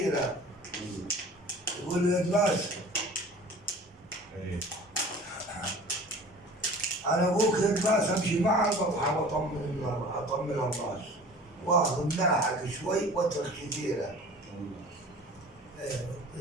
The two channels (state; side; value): normal; both; correlation 0.43